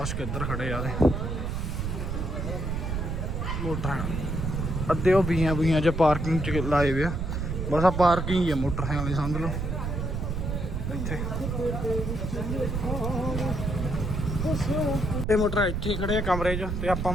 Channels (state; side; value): noise; right; rumble, 2 dB below the sound